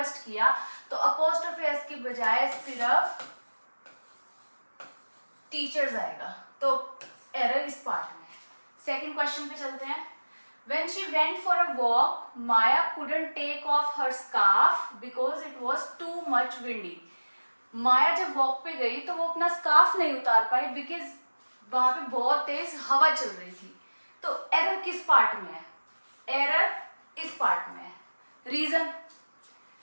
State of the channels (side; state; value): both; inverted; correlation -1.00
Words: किया। तो अपोस्ट्रोफी एस की बजाय सिर्फ टीचर्स आएगा, तो एरर इस पार्ट में। सेकंड क्वेश्चन पे चलते हैं। When she went for a walk, Maya couldn't take off her scarf because it was too much windy. माया जब वॉक पे गई तो वो अपना स्कार्फ नहीं उतार पाई बिकॉज वहां पे बहुत तेज हवा चल रही थी। तो एरर किस पार्ट में है? एरर इस पार्ट में है। रीजन